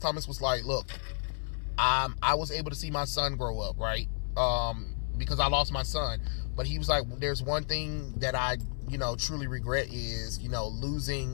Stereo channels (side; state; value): right; silent; 57 dB below the other